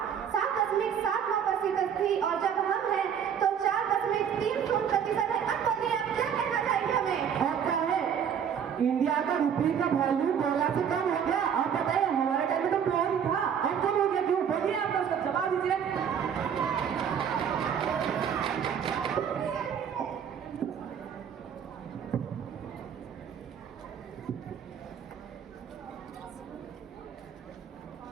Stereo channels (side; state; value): left; quieter; 8.0 dB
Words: 7.79% थी, और जब हम हैं तो 4.30% है। अब बताइए आप क्या कहना चाहेंगे हमें? और क्या है, इंडिया का रुपये का वैल्यू डॉलर से कम हो गया। आप बताइए, हमारे टाइम में तो प्योर ही था, अब कम हो गया क्यों? बोलिए, आप उसका जवाब दीजिए।